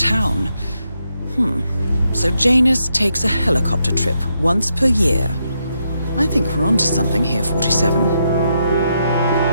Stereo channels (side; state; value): both; inverted; correlation -0.81